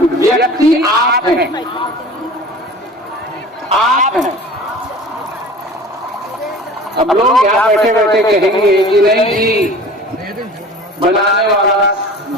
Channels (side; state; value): both; normal; correlation 0.41